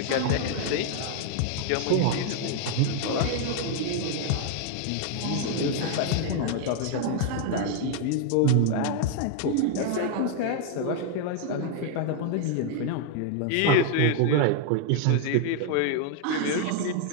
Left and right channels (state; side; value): different; both; correlation 0.00